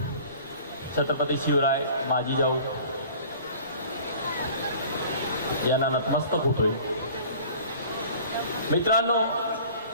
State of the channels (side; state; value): both; inverted; correlation -0.46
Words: छत्रपती शिवराय माजी जाऊ यांना नतमस्तक होतोय. मित्रांनो,